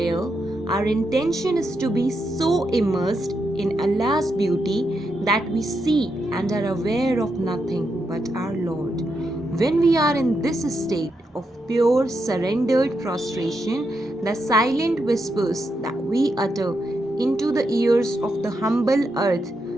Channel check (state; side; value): normal; both; correlation 0.83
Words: our intention is to be so immersed in Allah's beauty that we see and are aware of nothing but our Lord. When we are in this state of pure surrendered prostration, the silent whispers that we utter into the ears of the humble earth